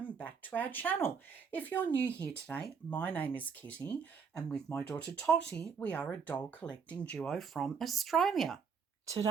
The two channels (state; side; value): quieter; left; 6.0 dB